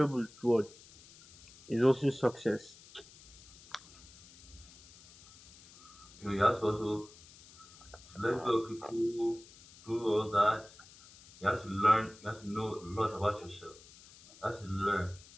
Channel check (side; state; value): left; noise; hiss, 22 dB below the sound